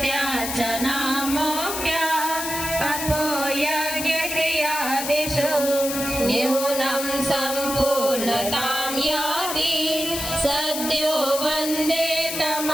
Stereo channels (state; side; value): noise; left; hiss, 5 dB below the sound